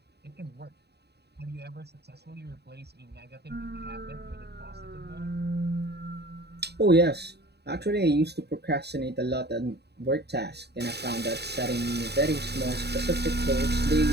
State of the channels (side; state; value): left; late; 0.48 ms